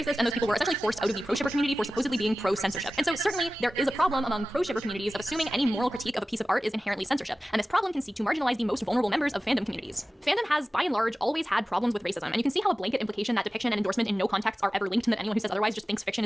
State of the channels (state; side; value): normal; both; correlation 0.96